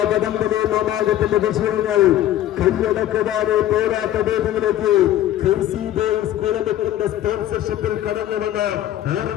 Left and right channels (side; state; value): right; quieter; 12.6 dB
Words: വടംവലി മാമാകത്തിന്റെ വിജയങ്ങൾ കൈയടക്കുവാനെ പോരാട്ട വേദിയിലേക്ക് ക്രേസി ബോയ്സ് കുളമുക്കിന്റെ സ്പോൺസർഷിപ്പിൽ കടന്നുവന്ന